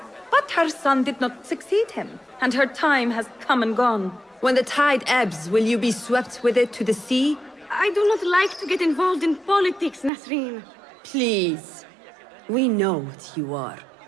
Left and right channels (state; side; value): drops out; left; at 10.1 s